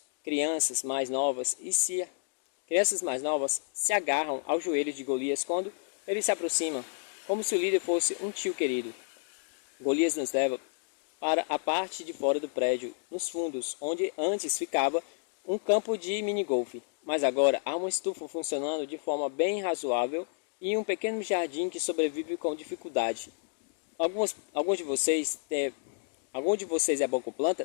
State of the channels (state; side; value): silent; right; digital silence